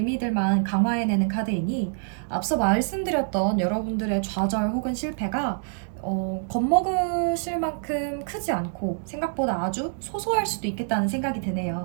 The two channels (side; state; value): left; silent; digital silence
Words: 강화해내는 카드이니 앞서 말씀드렸던 여러분들의 좌절 혹은 실패가 겁먹으실 만큼 크지 않고 생각보다 아주 소소할 수도 있겠다는 생각이